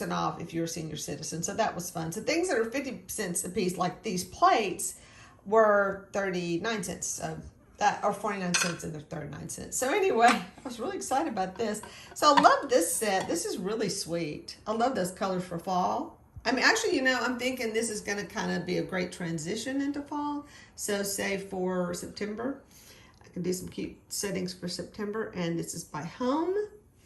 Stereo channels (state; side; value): identical; both; correlation 1.00